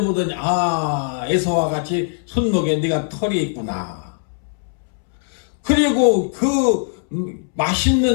에서와 같이 손목에 네가 털이 있구나. 그리고 그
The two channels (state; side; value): silent; right; 66 dB below the other